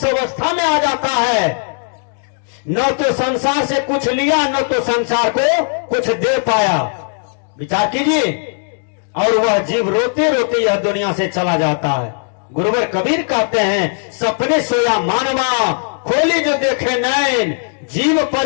अवस्था में आ जाता है, न तो संसार से कुछ लिया, न तो संसार को कुछ दे पाया। विचार कीजिए, और वह जीव रोते रोते यह दुनिया से चला जाता है। गुरुवर कबीर कहते हैं, सपने सोया मानवा, खोली जो देखे नैन, जीव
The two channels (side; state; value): right; silent; digital silence